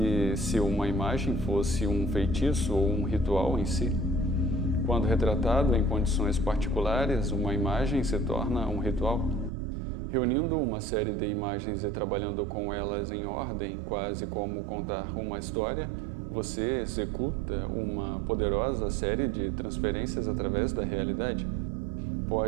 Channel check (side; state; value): left; drops out; at 9.5 s